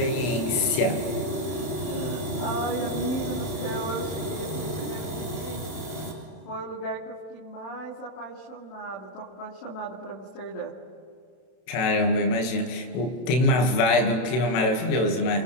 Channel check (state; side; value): late; right; 31 ms